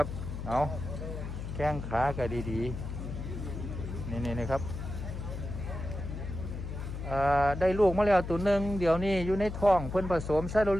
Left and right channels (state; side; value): noise; left; hum, 6 dB below the sound